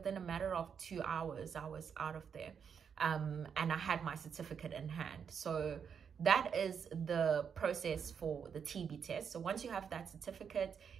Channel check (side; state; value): left; quieter; 7.1 dB